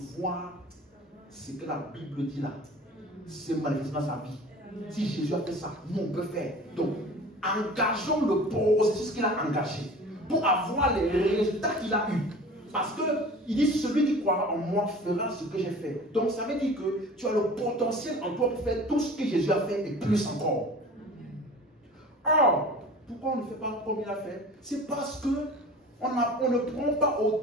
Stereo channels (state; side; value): normal; both; correlation 0.41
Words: voir ce que la Bible dit là. C'est manifestement sa vie. Si Jésus a fait ça, nous on peut faire. Donc, engageons le processus qu'il a engagé pour avoir les résultats qu'il a eus. Parce qu'il dit, celui qui croira en moi fera ce que j'ai fait. Donc, ça veut dire que tu as le potentiel en toi pour faire tout ce que Jésus a fait et plus encore. Or, pourquoi on ne fait pas comme il a fait? C'est parce que on ne prend pas